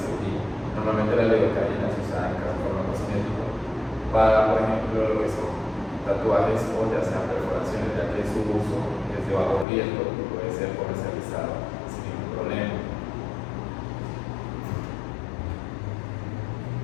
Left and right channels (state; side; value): drops out; right; at 9.7 s